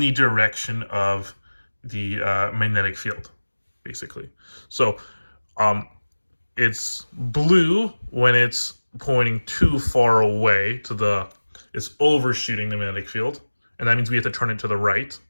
the direction of the magnetic field, basically. So it's blue when it's pointing too far away to it's overshooting the magnetic field, and that means we have to turn it to the right.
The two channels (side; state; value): both; inverted; correlation -1.00